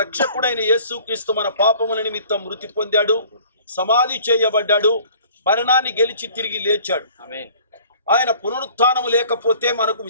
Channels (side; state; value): both; inverted; correlation -0.51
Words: రక్షకుడైన యేసుక్రీస్తు మన పాపముల నిమిత్తం మృతి పొందాడు, సమాధి చేయబడ్డాడు, మరణాన్ని గెలిచి తిరిగి లేచాడు. ఆయన పునరుత్థానము లేకపోతే మనకు